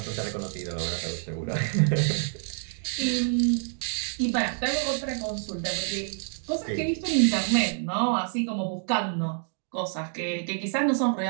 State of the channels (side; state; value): left; silent; 60 dB below the other